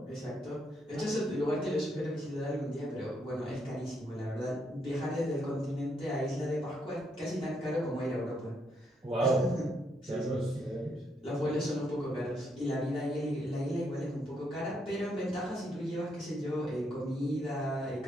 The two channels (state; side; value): normal; both; correlation 0.76